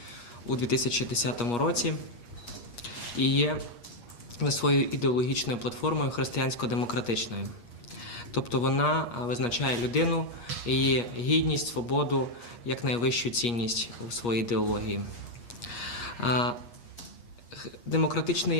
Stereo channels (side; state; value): right; late; 8.4 ms